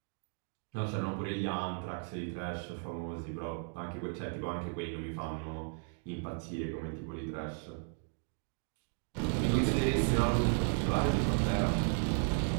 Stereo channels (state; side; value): silent; left; 54 dB below the other